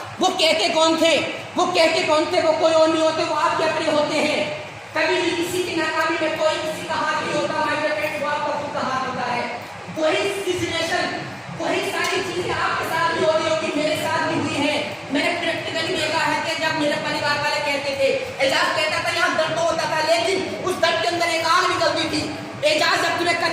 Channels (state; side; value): identical; both; correlation 1.00